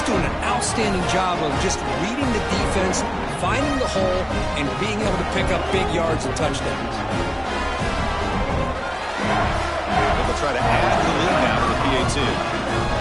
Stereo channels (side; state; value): both; identical; correlation 1.00